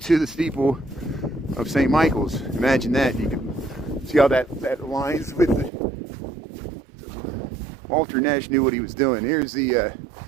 the steeple of St. Michael's. Imagine that. You can see how that aligns with the. Walter Nash knew what he was doing. Here's the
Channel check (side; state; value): left; drops out; at 5.7 s